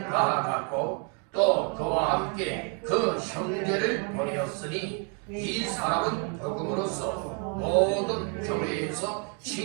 또 그와 함께 그 형제를 보내었으니 이 사람은 복음으로써 모든 교회에서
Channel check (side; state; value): left; quieter; 38.2 dB